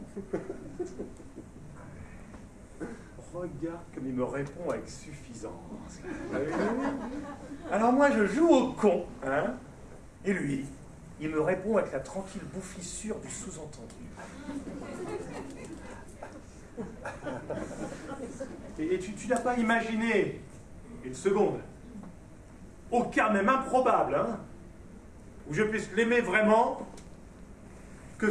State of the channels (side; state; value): both; identical; correlation 1.00